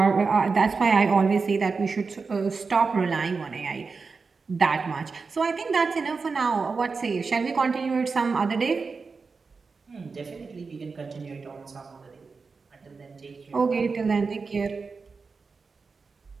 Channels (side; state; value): left; quieter; 4.6 dB